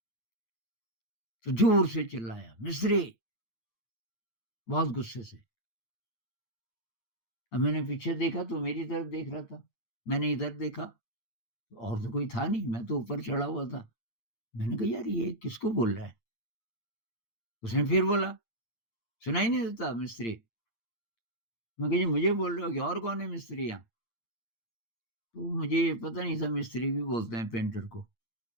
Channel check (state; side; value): late; right; 8.7 ms